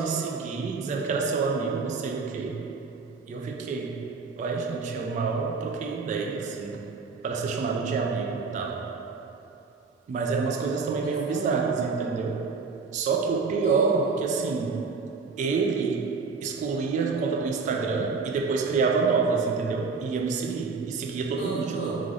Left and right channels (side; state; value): left; quieter; 4.5 dB